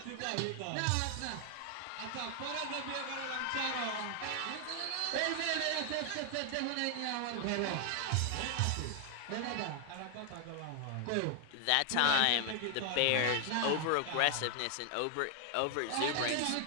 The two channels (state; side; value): different; both; correlation 0.00